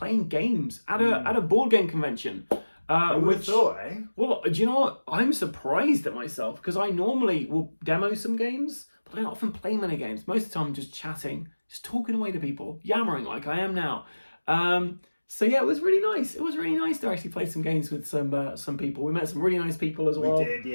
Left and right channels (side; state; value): both; inverted; correlation -1.00